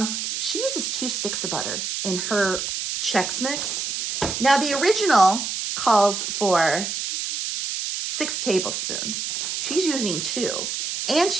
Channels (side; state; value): right; noise; hiss, 3 dB below the sound